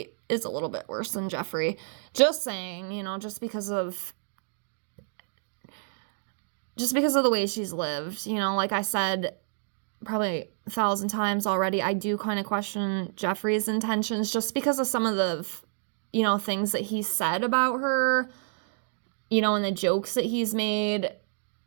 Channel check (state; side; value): silent; left; digital silence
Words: is a little bit worse than Jeffree. Just saying, just because of the way she's lived. Like I said, probably 1,000 times already, I do kind of question Jeffree's intentions just because of some of the, things that he said about her, and the jokes that he's made.